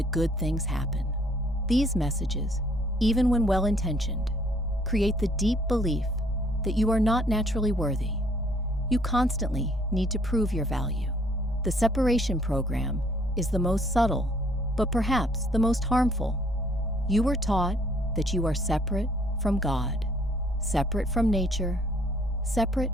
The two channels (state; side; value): normal; both; correlation 0.63